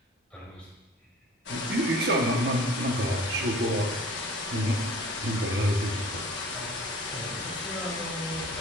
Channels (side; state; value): both; normal; correlation 0.46